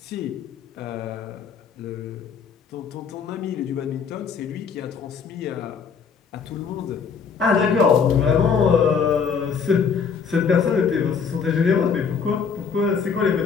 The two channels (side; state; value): right; quieter; 6.1 dB